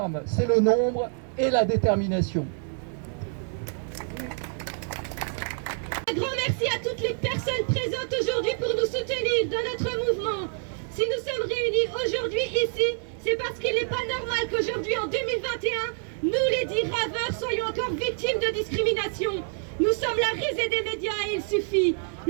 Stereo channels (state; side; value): silent; left; 60 dB below the other